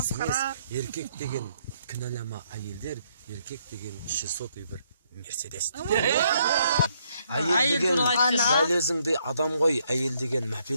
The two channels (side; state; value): both; inverted; correlation -0.71